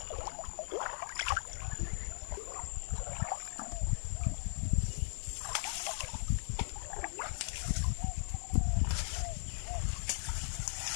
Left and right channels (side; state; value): right; silent; digital silence